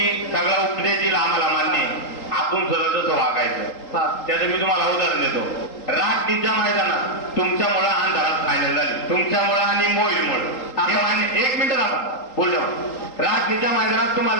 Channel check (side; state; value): right; late; 3.8 ms